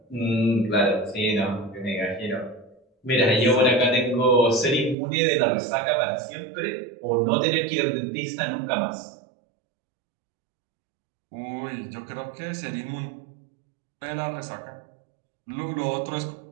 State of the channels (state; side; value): drops out; left; at 5.0 s